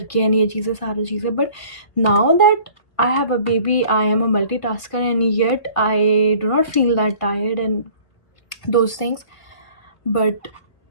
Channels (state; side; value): late; right; 1.8 ms